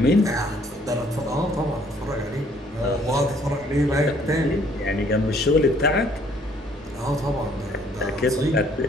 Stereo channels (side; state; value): both; normal; correlation 0.62